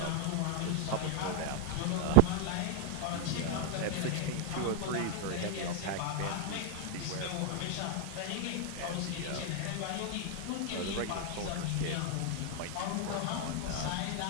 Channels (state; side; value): different; both; correlation 0.00